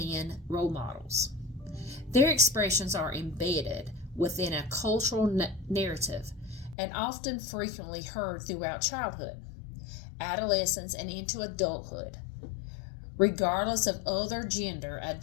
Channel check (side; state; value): right; drops out; at 6.8 s